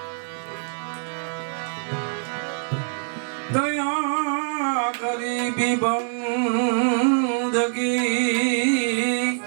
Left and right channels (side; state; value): left; silent; digital silence